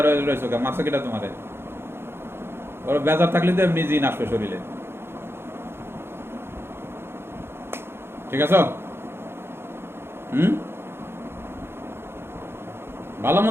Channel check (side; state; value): left; late; 0.11 ms